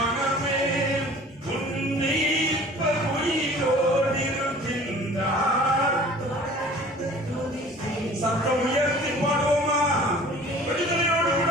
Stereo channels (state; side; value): normal; both; correlation 0.47